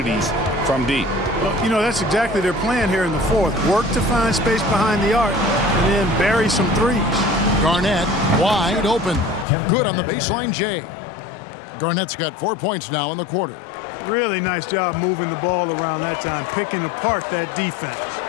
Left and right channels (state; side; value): drops out; right; at 9.5 s